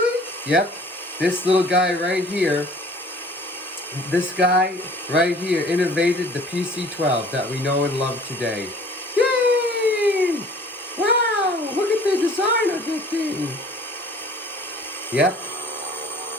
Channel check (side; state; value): both; normal; correlation 0.51